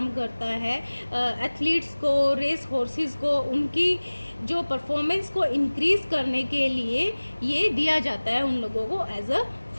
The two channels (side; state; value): both; inverted; correlation -1.00